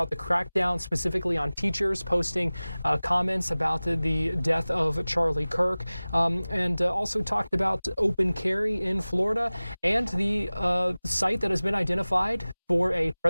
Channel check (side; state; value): both; inverted; correlation -0.99